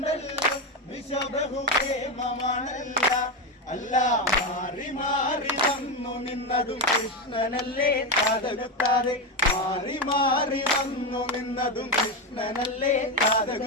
വിഷബഹുപ്രേമമാണല്ല. അല്ല മാറി മാറി വന്നു നിന്നതും കൃഷ്ണനല്ലേ താതകുത്താതെ, മാറി മാറി വന്നു നിന്നതും കൃഷ്ണനല്ലേ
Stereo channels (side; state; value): both; normal; correlation 0.12